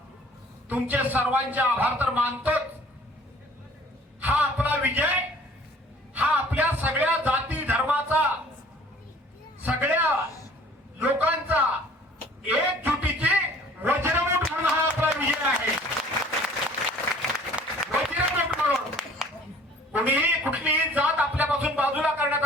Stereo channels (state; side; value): normal; both; correlation 0.52